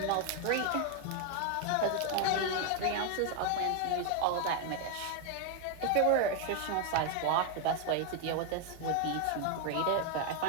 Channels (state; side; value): different; both; correlation 0.00